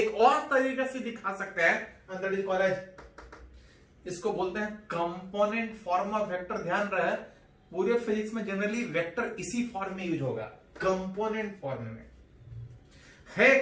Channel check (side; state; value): both; identical; correlation 1.00